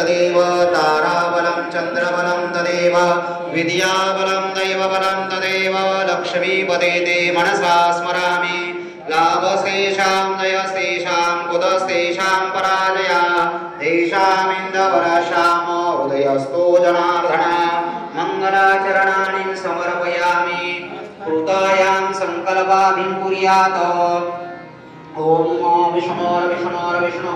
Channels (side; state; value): both; identical; correlation 1.00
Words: ताराबलं चन्द्रबलं तदेव विद्याबलं दैवबलं तदेव लक्ष्मीपते ते मनसा स्मरामि लाभस्तेषां जयस्तेषां कुतस्तेषां पराजया तेषामिन्दवरश्यामो हृदयस्थो जनार्दन मङ्गलाचरणानि समर्पयामि कृतायां सङ्कल्पाभिं कुर्यात् ओम